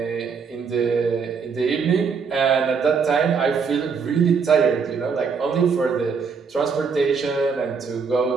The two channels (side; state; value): left; quieter; 5.7 dB